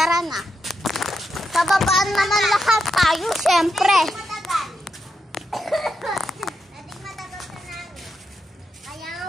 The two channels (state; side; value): normal; both; correlation 0.85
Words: na. Pababaan naman lahat tayo, syempre. Matagal. Dating matagal sa namin. Kaya nga